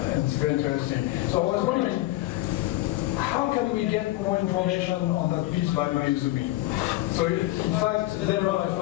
it's very interesting. So I was wondering, how can we get more information on that piece by Mayuzumi? So in fact, later on I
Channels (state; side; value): quieter; right; 17.5 dB